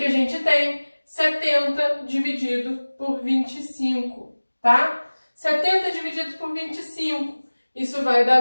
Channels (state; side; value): inverted; both; correlation -1.00